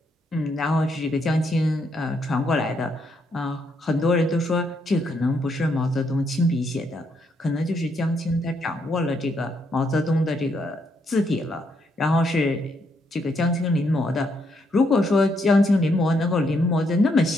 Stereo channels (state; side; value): normal; both; correlation 0.76